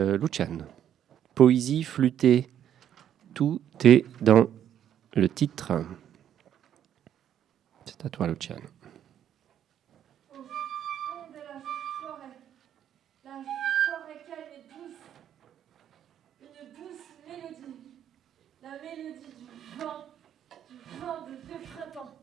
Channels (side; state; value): left; quieter; 10.0 dB